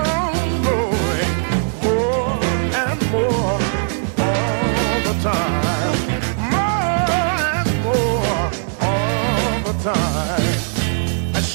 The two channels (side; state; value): left; silent; digital silence